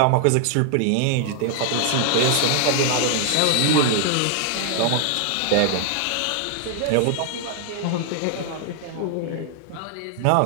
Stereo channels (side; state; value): both; different; correlation 0.00